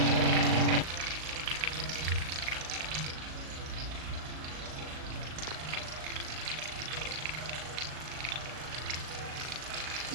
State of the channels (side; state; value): left; late; 38 ms